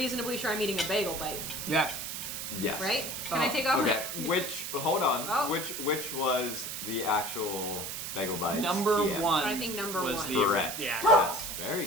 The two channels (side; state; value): right; noise; hiss, 5 dB below the sound